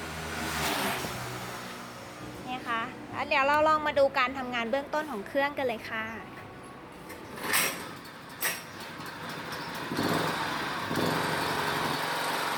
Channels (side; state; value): both; identical; correlation 1.00